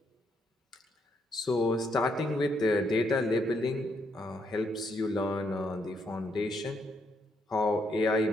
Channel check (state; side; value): normal; both; correlation 0.76